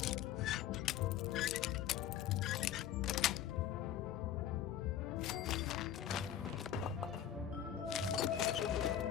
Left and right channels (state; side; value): quieter; right; 10.5 dB